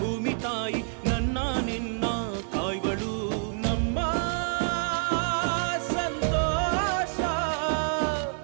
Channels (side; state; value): left; silent; 60 dB below the other